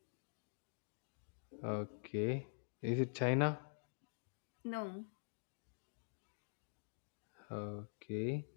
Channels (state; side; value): silent; right; digital silence